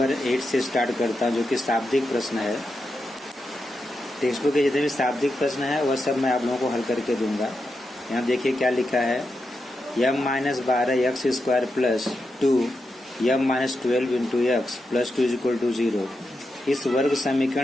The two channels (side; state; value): both; normal; correlation 0.87